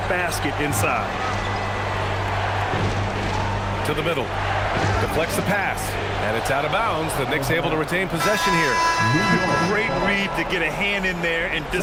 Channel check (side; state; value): both; identical; correlation 1.00